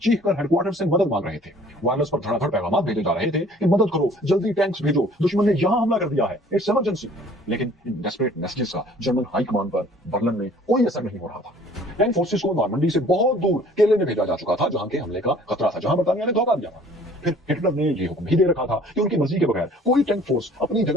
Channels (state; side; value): normal; both; correlation 0.53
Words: चीख कर हेडक्वार्टर से मदद मांग रहे थे। वायरलेस पर धड़ाधड़ पैगाम भेजे जा रहे थे कि मदद करो, जल्दी टैंक्स भेजो, दुश्मन ने यहां हमला कर दिया है, इट्स इमरजेंसी। लेकिन इन डेस्परेट मैसेजेस का जर्मन हाई कमांड पर बर्लिन में कोई असर नहीं हो रहा था। टैंक फोर्सेस को नॉर्मंडी से बहुत दूर केले में भेजा जा चुका था, जहां के हमले का खतरा था, जहां बरतानिया ने धोखा दिया था। फिर हिटलर ने ये हुक्म भी दे रखा था कि उनकी मर्जी के बगैर कोई टैंक फोर्स अपनी